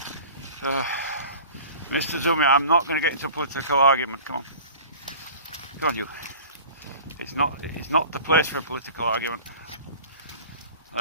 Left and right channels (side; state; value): both; inverted; correlation -0.43